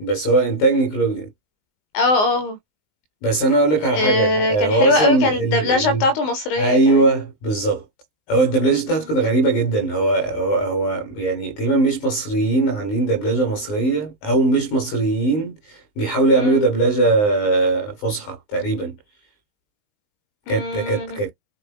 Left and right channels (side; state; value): right; late; 19 ms